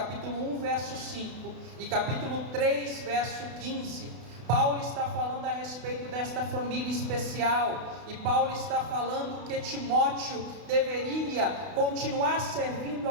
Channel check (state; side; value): late; left; 32 ms